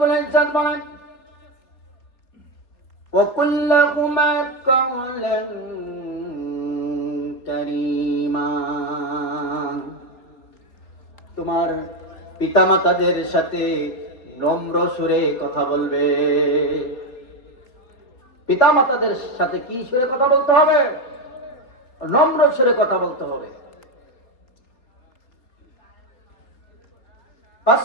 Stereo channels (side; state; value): right; late; 3.7 ms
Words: ইজ্জত বলেন, وَقُلْ لَهُمَا قَوْلًا كَرِيمًا, তোমার পিতামাতাদের সাথে নম্র সুরে কথা বলবে। পিতামাতাদের সাথে কি সুরে কথা বলতে হবে? নম্র সুরে কথা বলতে হবে। 5